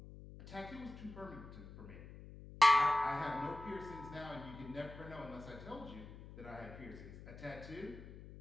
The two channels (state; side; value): noise; left; hum, 14 dB below the sound